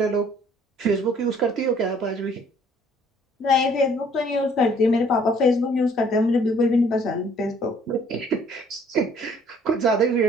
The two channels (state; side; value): normal; both; correlation 0.59